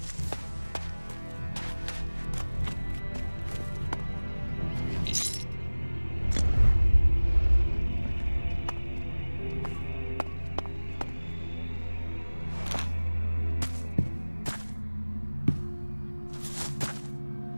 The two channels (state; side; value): inverted; both; correlation -1.00